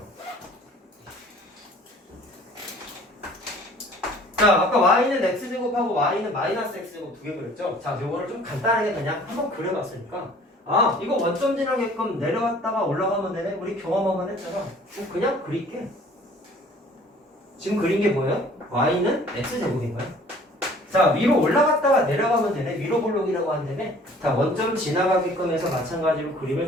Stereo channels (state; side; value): normal; both; correlation 0.52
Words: 자, 아까 y는 x제곱하고 y는 마이너스 x제곱 두 개 그렸죠? 자, 요거를 좀 간단하게 그냥 한번 그려봤으니까, 아, 이거 원점 지나게끔 내려갔다가 올라가면 되네? 우리 경험만 했잖아. 그냥 그릴게. 지금 그린 게 뭐예요? y는 x제곱인 거야. 자, 위로 올라갔다가 내려가면 되네? 위로 볼록이라고 한다며? 자, 원점 지나가게끔 해서 마찬가지로 그림을